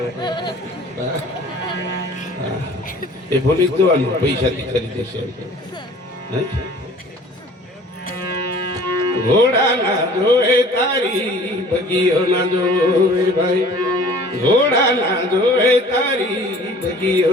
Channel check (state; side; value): normal; both; correlation 0.48